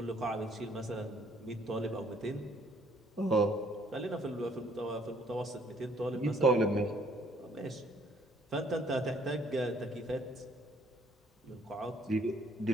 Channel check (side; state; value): both; normal; correlation 0.63